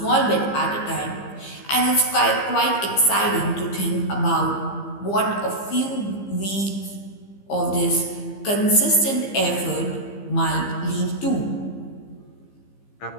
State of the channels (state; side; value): late; right; 15 ms